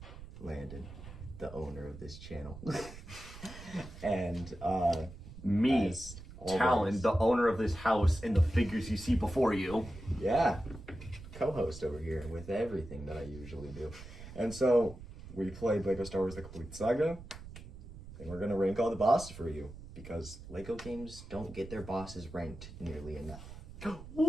Landon, the owner of this channel. And me, as Talan, always, the owner of this house and the figures you see before you. yeah, co-host over here with everything that I usually do. And so we played Lego Star Wars The Complete Saga, and we're gonna rank all the bosses for you because Lego games don't get their bosses ranked nearly enough.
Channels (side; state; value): right; noise; rumble, 14 dB below the sound